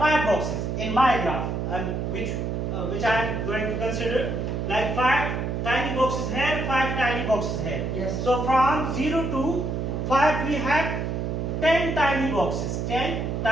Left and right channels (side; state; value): right; noise; hum, 2 dB below the sound